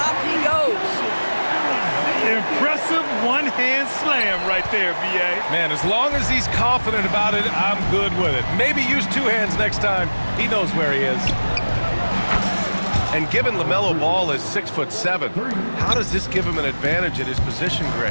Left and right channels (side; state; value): both; inverted; correlation -1.00